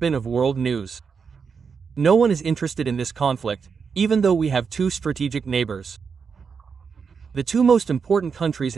of world news. No one is interested in this conflict, even though we have two strategic neighbors. The two most important countries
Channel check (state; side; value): quieter; left; 5.8 dB